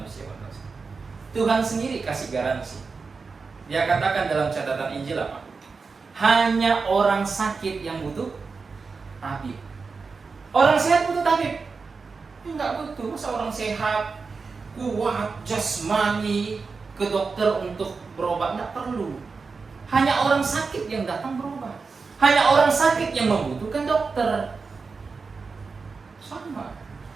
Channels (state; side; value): quieter; left; 4.7 dB